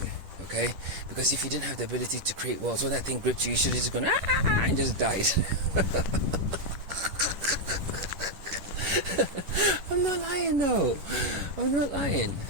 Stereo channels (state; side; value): late; left; 10 ms